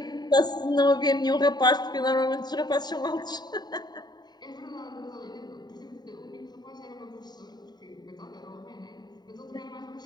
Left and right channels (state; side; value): late; right; 0.20 ms